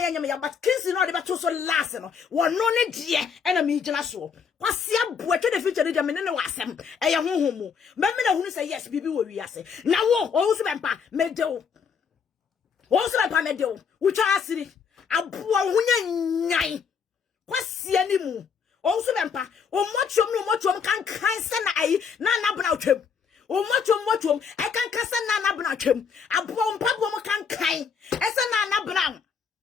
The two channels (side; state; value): right; quieter; 6.3 dB